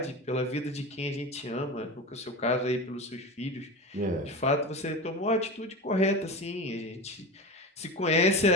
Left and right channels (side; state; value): both; normal; correlation 0.27